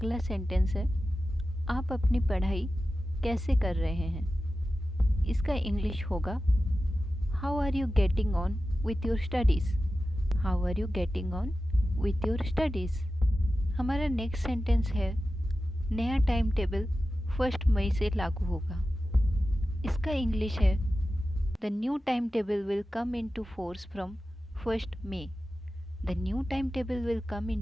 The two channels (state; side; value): normal; both; correlation 0.94